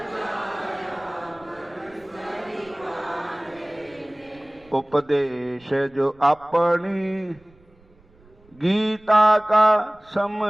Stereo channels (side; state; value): right; noise; rumble, 29 dB below the sound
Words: उपदेश जो अपनी गीता का